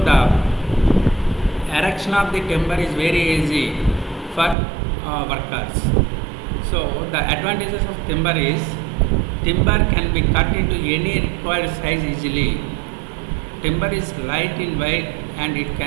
the erection of the timber is very easy for workers. So the advantages of timber is timber can be cut into any required size easily. Timber is light in weight and it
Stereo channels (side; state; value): left; drops out; at 4.5 s